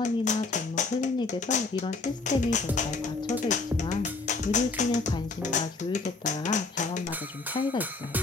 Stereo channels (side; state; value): right; quieter; 3.8 dB